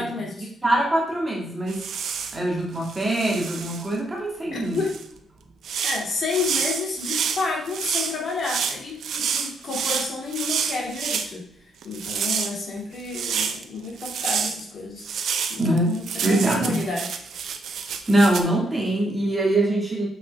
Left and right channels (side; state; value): both; normal; correlation 0.74